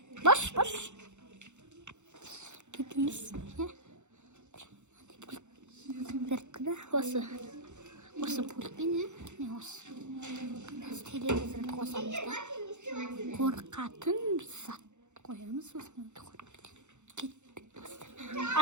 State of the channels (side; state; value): left; late; 0.83 ms